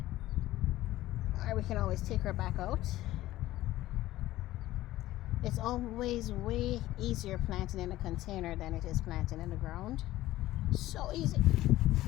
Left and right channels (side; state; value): right; quieter; 15.7 dB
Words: Or we can always take her back out. It's always way easier planting in a container than it is planting in the ground. So easy